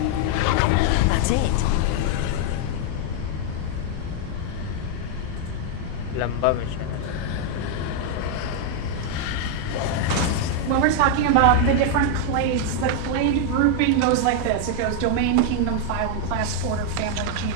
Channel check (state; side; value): different; both; correlation 0.00